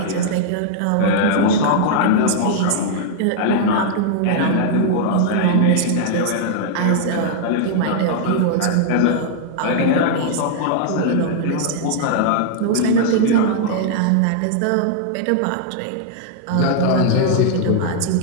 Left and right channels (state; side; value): different; both; correlation -0.01